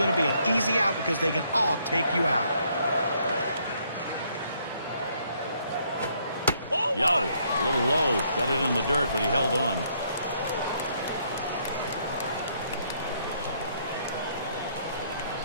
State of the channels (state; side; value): inverted; both; correlation -0.70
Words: to be an easy out because they can all take you out. Yo, a little low. Got it in the dirt, but he held on.